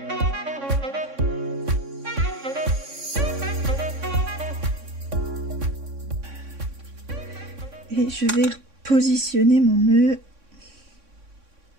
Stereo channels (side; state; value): left; late; 3.6 ms